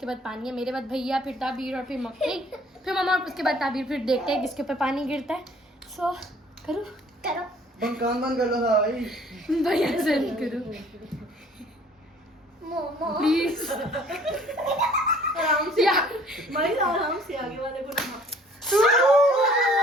बाद पानी है. मेरे बाद भैया, फिर ताबीर और फिर मम्मी, फिर मम्मा और उसके बाद ताबीर. फिर देखते हैं किसके ऊपर पानी गिरता है. So करो. कान बंद कर लो भाई. भैया से करो प्लीज. आराम से. भाई आराम से आगे वाले को ना.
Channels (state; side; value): normal; both; correlation 0.55